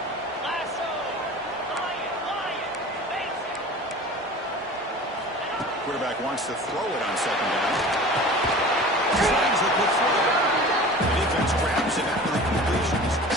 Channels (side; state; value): both; normal; correlation 0.39